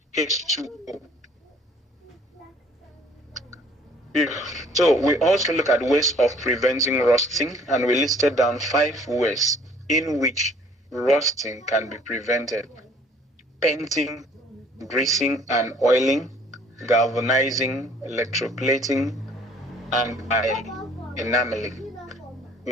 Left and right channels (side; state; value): both; normal; correlation 0.57